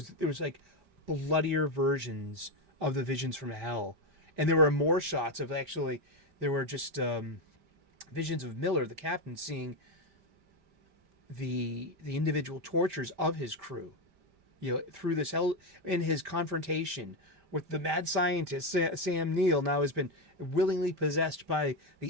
was like bloodier versions of the visions from hell, and there were more shots of actually. There were just visions of Miller, the captain, seeing the individual tortures of his crew, through this hell, in his confrontation with the mad scientist. Sam Neill now has been willingly possessed by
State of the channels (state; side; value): late; left; 5.0 ms